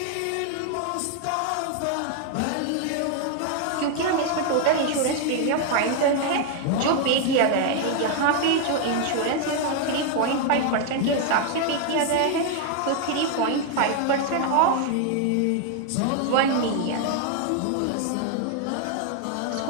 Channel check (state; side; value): different; both; correlation 0.00